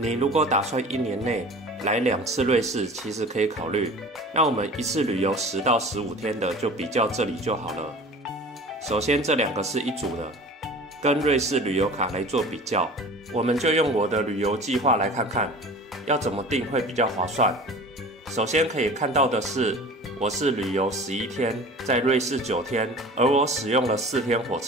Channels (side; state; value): both; normal; correlation 0.40